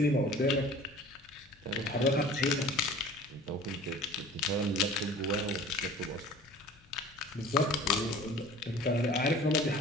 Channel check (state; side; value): normal; both; correlation 0.45